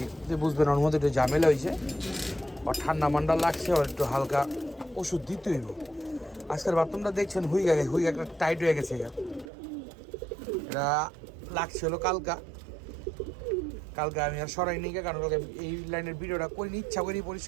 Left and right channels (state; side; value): drops out; left; at 9.5 s